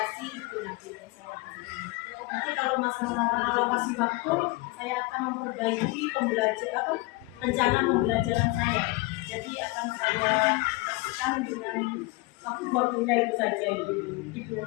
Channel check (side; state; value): right; quieter; 22.3 dB